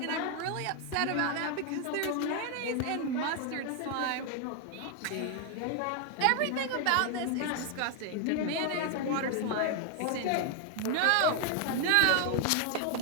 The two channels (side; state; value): both; different; correlation 0.01